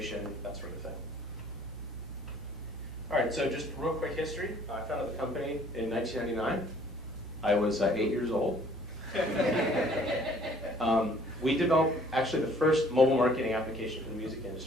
that sort of thing. All right, so just real quick history. I founded the company in 1999. I was 8 years old. We developed actually the first mobile marketing application for the music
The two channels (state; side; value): normal; both; correlation 0.57